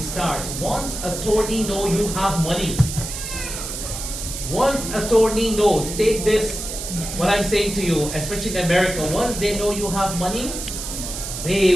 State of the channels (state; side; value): noise; right; hiss, 7 dB below the sound